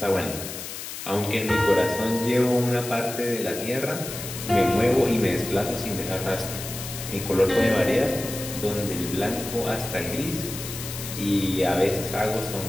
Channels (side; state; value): left; noise; hiss, 8 dB below the sound